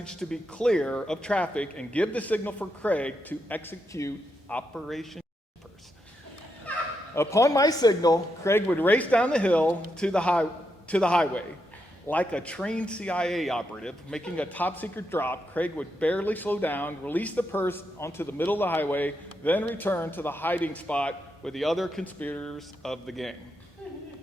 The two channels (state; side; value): normal; both; correlation 0.83